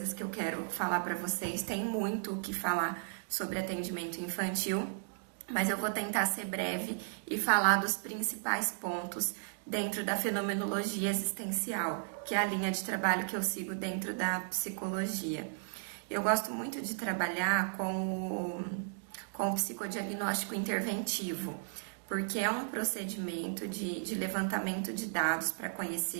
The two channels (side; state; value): left; silent; digital silence